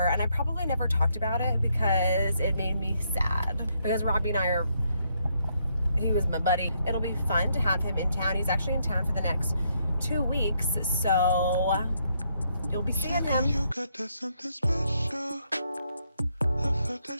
and I probably never talked about it because it made me sad, because Robby and he was my buddy. It'll be fun to have him in town. He's actually in town for the next 2 weeks, so you'll be seeing him. You got that something special. I felt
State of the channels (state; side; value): inverted; both; correlation -0.75